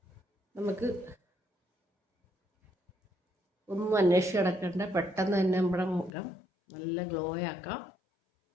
നമുക്ക് ഒന്നും അന്വേഷിച്ച് കിടക്കേണ്ട, പെട്ടെന്ന് തന്നെ നമ്മുടെ മുഖം നല്ല ഗ്ലോ ആക്കാം.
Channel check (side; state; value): right; drops out; at 6.1 s